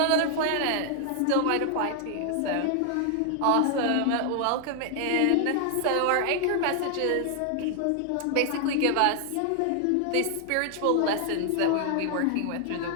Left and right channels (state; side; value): different; both; correlation 0.00